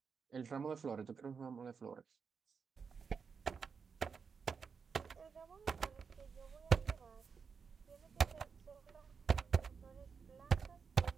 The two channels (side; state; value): left; quieter; 5.8 dB